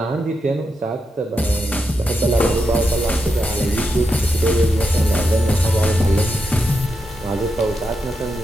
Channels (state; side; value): normal; both; correlation 0.85